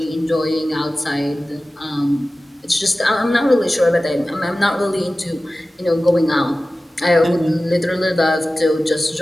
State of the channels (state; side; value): normal; both; correlation 0.96